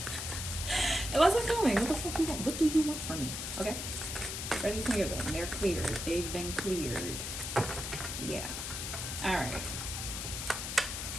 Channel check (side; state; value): left; noise; hiss, 5 dB below the sound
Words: It wasn't filming. What the fuck you want? What do you want from me? Okay. Already cleared them. They're cleared. They've been cleared. Yeah. Alright.